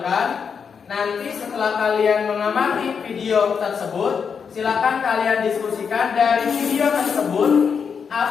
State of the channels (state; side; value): quieter; right; 6.4 dB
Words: Nanti setelah kalian mengamati video tersebut, silakan kalian diskusikan dari video tersebut